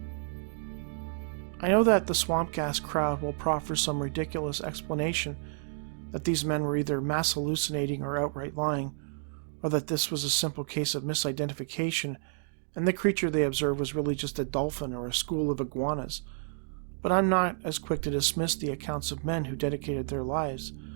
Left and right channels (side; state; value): left; silent; digital silence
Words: I know that the swamp gas crowd will proffer some ridiculous explanation that these men were either mass hallucinating or outright lying, or that this was a simple case of misidentification and the creature they observed was really just a dolphin or a school of iguanas. But I'm not as quick to dismiss the accounts of men who dedicated their lives